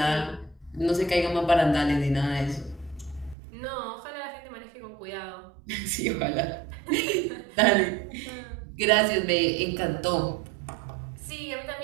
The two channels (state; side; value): drops out; left; at 3.4 s